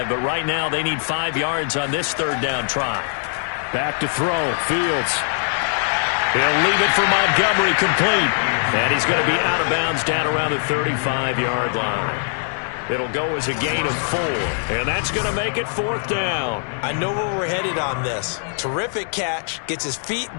but right now they need 5 yards on this 3rd down try. Back to throw. Fields. He'll leave it for Montgomery, complete. And he's going to be out of bounds down around the 35-yard line. It'll go as a gain of 4, and that's going to make it 4th down. I know where we're headed on this. Terrific catch, gets his feet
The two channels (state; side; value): silent; right; digital silence